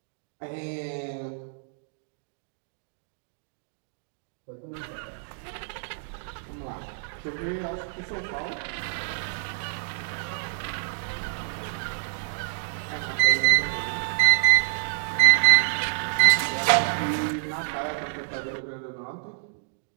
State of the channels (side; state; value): left; silent; digital silence